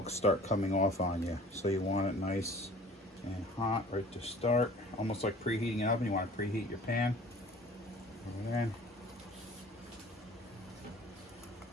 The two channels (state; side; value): normal; both; correlation 0.48